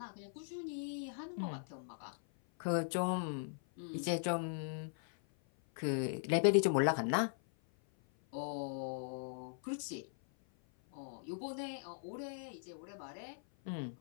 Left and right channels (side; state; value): right; silent; 51 dB below the other